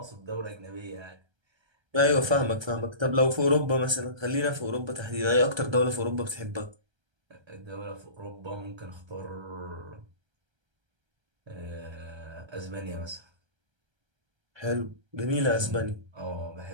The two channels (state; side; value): late; left; 1.3 ms